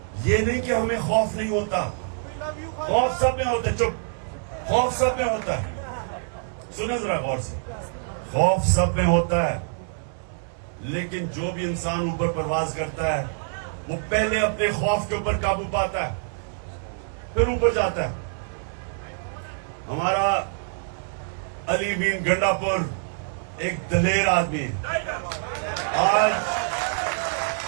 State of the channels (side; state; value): left; silent; 59 dB below the other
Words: یہ نہیں کہ ہمیں خوف نہیں ہوتا، خوف سب میں ہوتا ہے. چپ، خوف سب میں ہوتا ہے. سنیں ذرا غور سے، خوف سب میں ہوتا ہے، لیکن جو بھی انسان اوپر پرواز کرتا ہے وہ پہلے اپنے خوف کے اوپر قابو پاتا ہے، پھر اوپر جاتا ہے. ہمارا علی مین گنڈا پور ایک دلیر آدمی ہے. آج